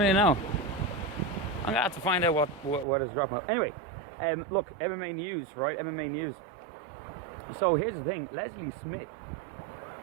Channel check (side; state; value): left; drops out; at 2.9 s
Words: know. I'm gonna have to find out what is dropping. Anyway, look, MMA news, right? MMA news. So here's the thing, Leslie Smith.